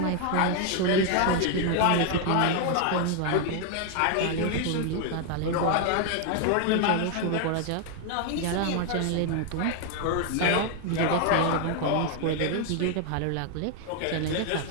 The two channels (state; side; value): different; both; correlation 0.01